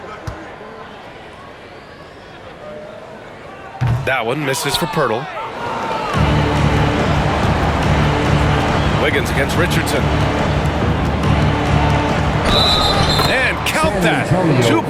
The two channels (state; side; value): identical; both; correlation 1.00